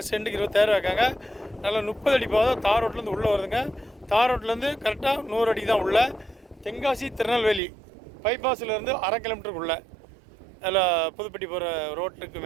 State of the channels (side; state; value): left; drops out; at 7.6 s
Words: சென்ட்டுக்கு 26 வைக்காங்க. நல்லா 30 அடி பாதை தார் ரோட்லேருந்து உள்ளே வருதுங்க. தார் ரோட்லேருந்து கரெக்டாக 100 அடி தான் உள்ள. தென்காசி திருநெல்வேலி பைபாஸ்லேருந்து 1/2 கிலோமீட்டருக்குள்ளே அதில் புதுப்பட்டி போகிற ரோட்டுக்கு